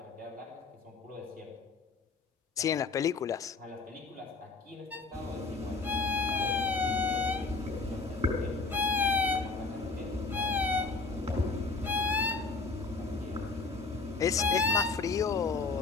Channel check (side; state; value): right; quieter; 4.1 dB